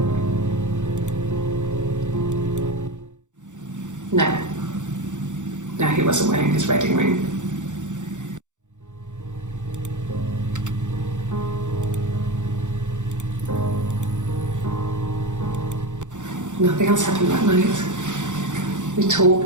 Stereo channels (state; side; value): late; left; 0.85 ms